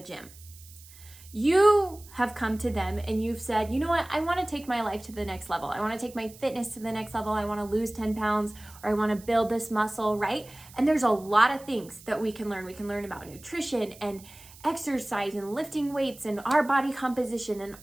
gym. You have come to them and you've said, you know what, I want to take my life to the next level. I want to take my fitness to the next level. I want to lose 10 pounds, or I want to build this muscle, right? And there's a lot of things that we can learn. We can learn about nutrition and exercise and lifting weights and our body composition and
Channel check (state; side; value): noise; right; hiss, 21 dB below the sound